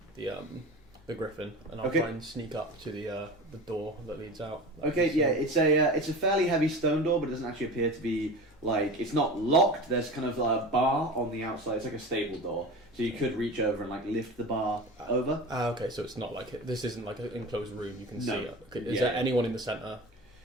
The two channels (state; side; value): normal; both; correlation 0.32